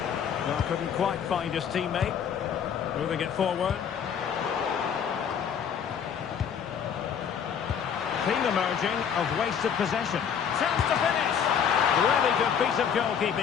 Well, couldn't quite find his teammate. Moving it forward. Theme emerging of wasted possession. Chance to finish. Really good piece of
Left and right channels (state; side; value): quieter; right; 7.8 dB